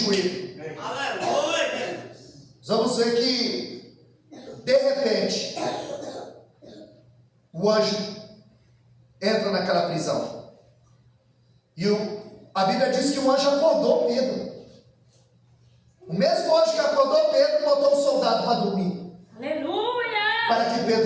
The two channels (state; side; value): identical; both; correlation 1.00